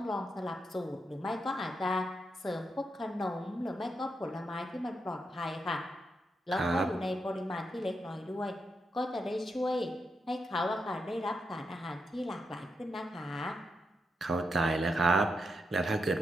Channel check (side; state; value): both; normal; correlation 0.83